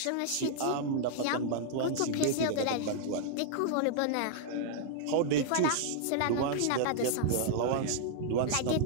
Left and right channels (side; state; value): both; different; correlation -0.01